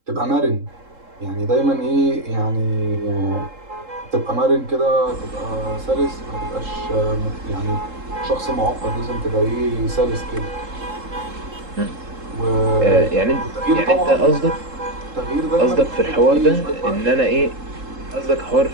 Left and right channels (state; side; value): late; left; 3.7 ms